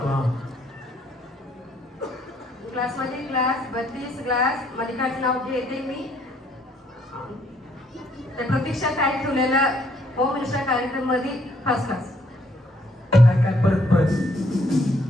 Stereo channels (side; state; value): both; normal; correlation 0.68